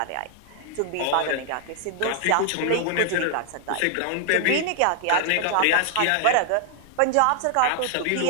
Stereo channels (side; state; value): both; different; correlation 0.00